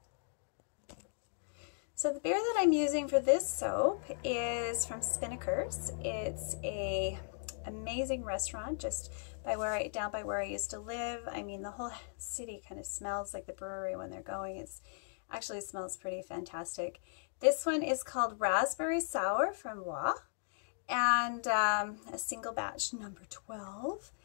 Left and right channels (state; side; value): silent; right; digital silence